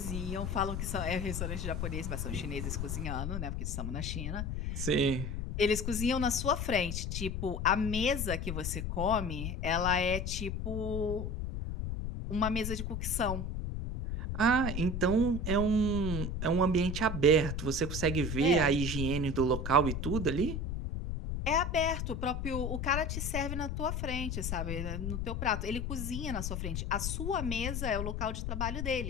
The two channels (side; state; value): left; noise; rumble, 3 dB below the sound